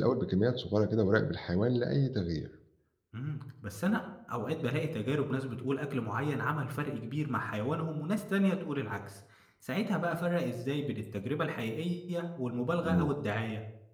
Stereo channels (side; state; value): both; identical; correlation 1.00